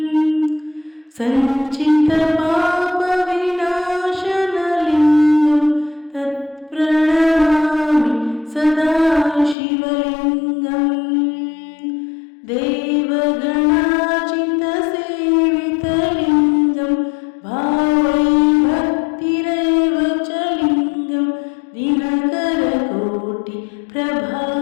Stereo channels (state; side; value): drops out; right; at 9.6 s